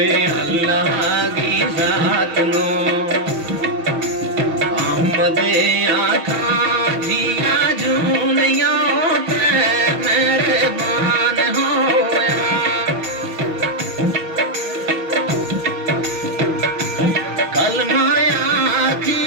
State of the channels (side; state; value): left; late; 6.4 ms